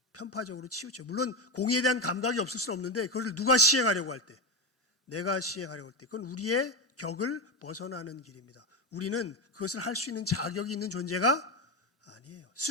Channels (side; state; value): both; normal; correlation 0.15